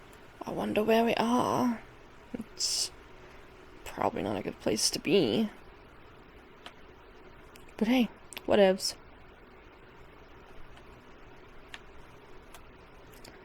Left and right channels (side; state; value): both; identical; correlation 1.00